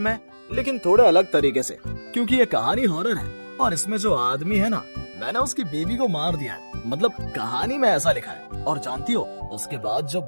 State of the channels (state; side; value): inverted; both; correlation -1.00